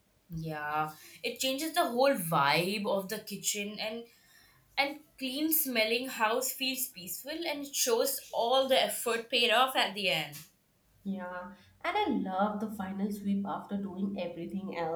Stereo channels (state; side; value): identical; both; correlation 1.00